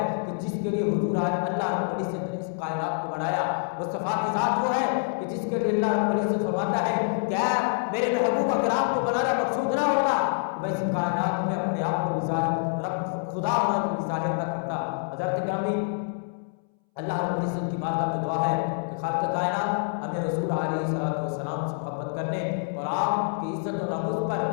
کہ جس کے لیے حضور آج اللہ رب العزت نے اس کائنات کو بنایا۔ مصطفیٰ کی ذات وہ ہے کہ جس کے لیے اللہ رب العزت فرماتا ہے کہ اے میرے محبوب اکرام کو بنانا مقصود نہ ہوتا، میں اس کائنات میں اپنے آپ کو ظاہر رب خدا ہونا کو ظاہر نہ کرتا۔ حضرت گرامی، اللہ رب العزت کی بارگاہ میں دعا ہے کہ خالق کائنات ہمیں رسول علیہ السلام سے محبت کرنے اور آپ کی عزت و ناموس پر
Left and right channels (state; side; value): silent; right; 60 dB below the other